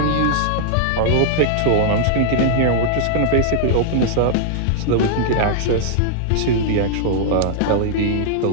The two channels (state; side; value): different; both; correlation -0.01